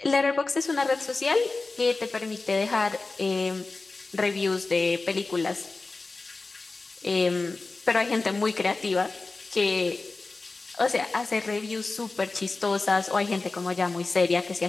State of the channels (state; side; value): quieter; right; 3.6 dB